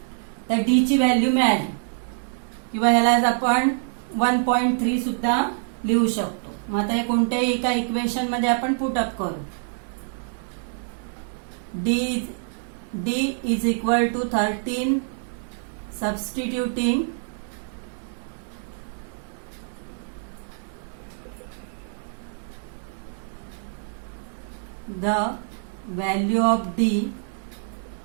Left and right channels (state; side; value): silent; left; 61 dB below the other